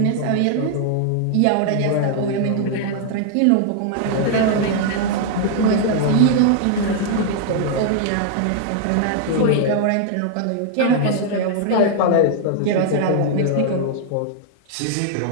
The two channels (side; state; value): both; different; correlation 0.00